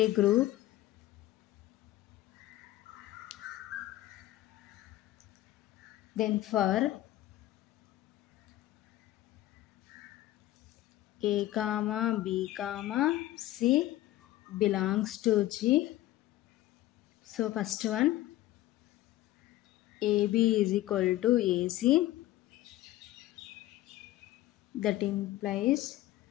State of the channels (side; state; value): right; quieter; 15.4 dB